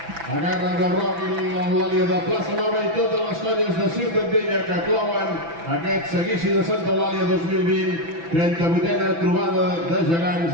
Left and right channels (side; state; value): left; late; 6.0 ms